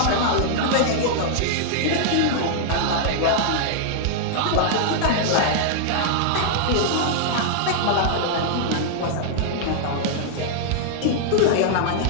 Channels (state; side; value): different; both; correlation -0.01